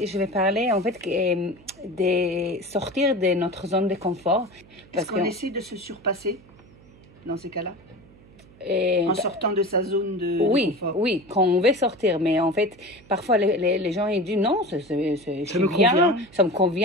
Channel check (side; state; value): right; noise; hum, 25 dB below the sound